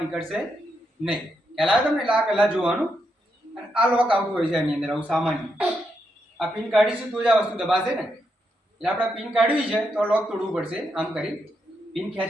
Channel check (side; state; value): both; normal; correlation 0.81